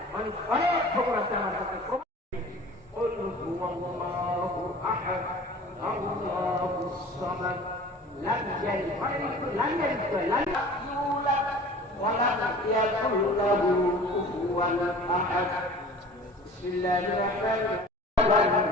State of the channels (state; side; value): normal; both; correlation 0.43